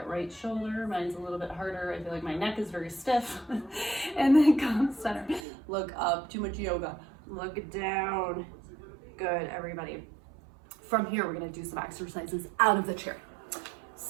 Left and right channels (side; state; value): left; drops out; at 5.5 s